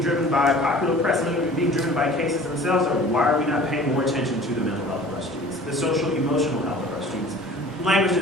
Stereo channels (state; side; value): normal; both; correlation 0.45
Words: driven by popular press, some of it being driven by cases themselves, or why are we not paying more attention to the mental health of our students, the social emotional health of our students, language